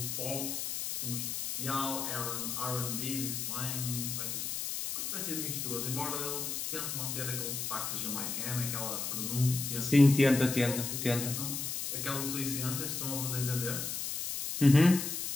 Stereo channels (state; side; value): noise; left; hiss, 3 dB below the sound